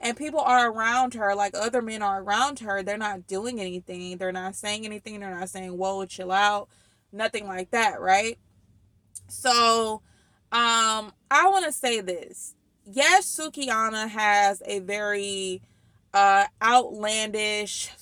people are around her, like other men are around her. They're not doing anything. They're not saying anything. They're not saying, whoa, chill out. Nothing like that, right? So, I want to say this. Yes, Sukihana has a very outlandish,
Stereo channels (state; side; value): identical; both; correlation 1.00